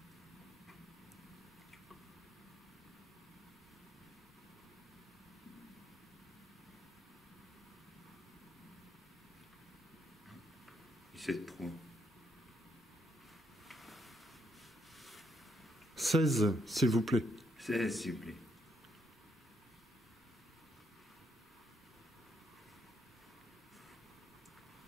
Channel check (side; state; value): both; normal; correlation 0.75